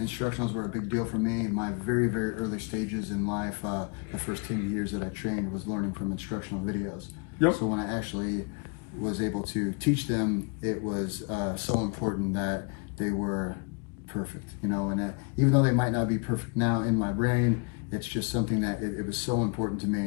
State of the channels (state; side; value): quieter; right; 33.8 dB